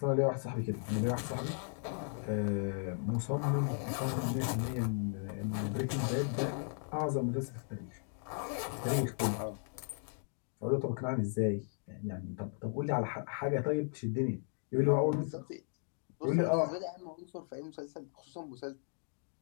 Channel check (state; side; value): silent; right; 54 dB below the other